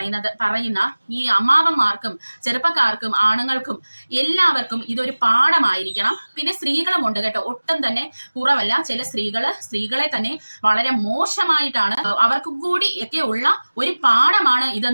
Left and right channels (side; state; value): both; inverted; correlation -1.00